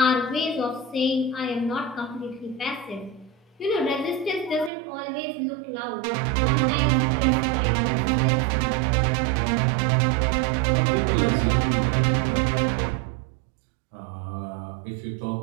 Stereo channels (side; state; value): left; drops out; at 4.7 s